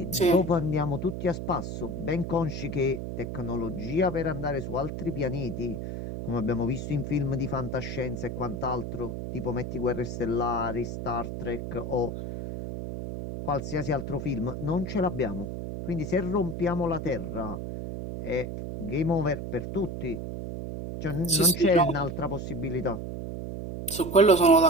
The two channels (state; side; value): noise; right; hum, 6 dB below the sound